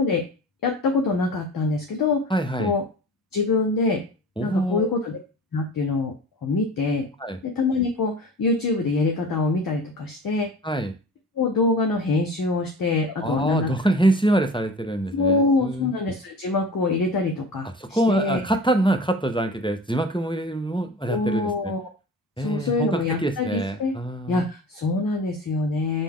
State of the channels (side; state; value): both; normal; correlation 0.38